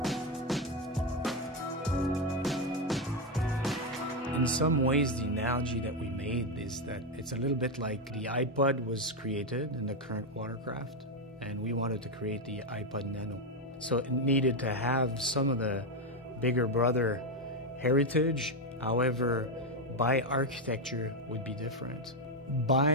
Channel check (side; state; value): both; normal; correlation 0.07